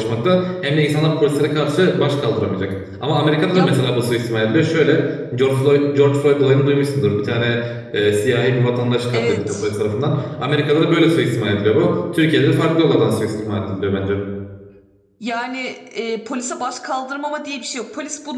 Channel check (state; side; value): identical; both; correlation 1.00